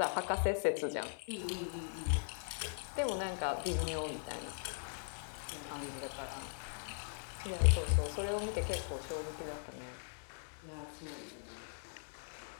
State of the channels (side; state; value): right; silent; digital silence